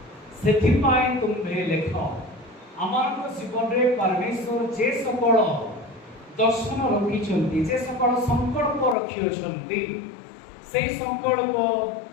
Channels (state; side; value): drops out; right; at 9.0 s